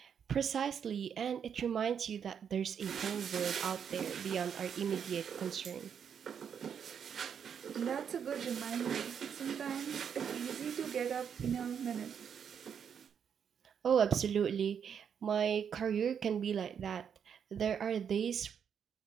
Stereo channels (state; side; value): quieter; left; 7.7 dB